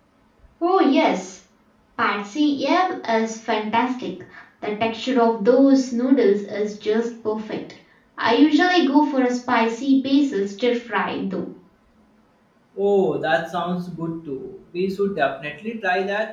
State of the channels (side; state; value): both; identical; correlation 1.00